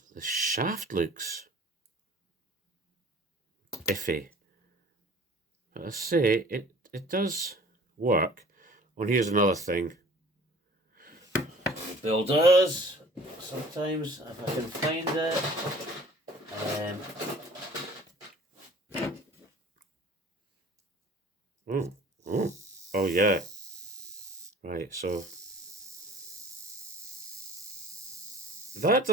shaft looks iffy. But I say it does work. Well, here's another thing. Bill does sometimes, if I can find it. Oh yeah. Right, so that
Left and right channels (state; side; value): normal; both; correlation 0.48